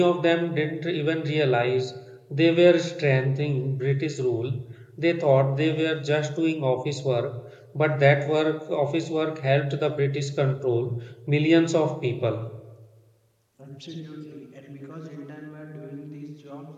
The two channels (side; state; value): both; identical; correlation 1.00